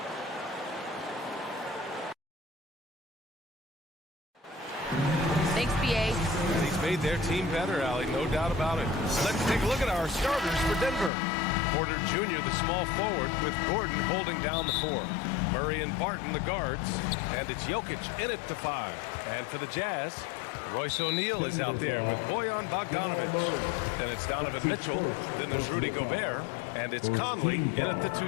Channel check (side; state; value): right; drops out; at 11.1 s